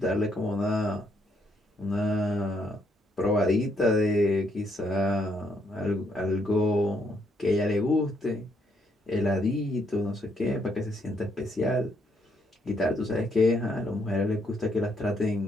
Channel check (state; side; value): normal; both; correlation 0.73